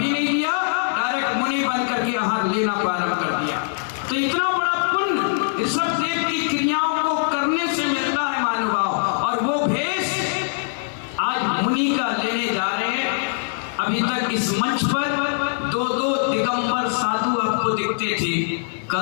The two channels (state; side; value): silent; right; digital silence